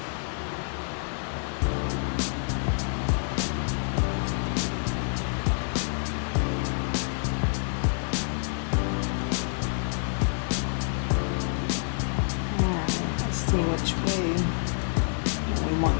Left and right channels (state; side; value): silent; right; 60 dB below the other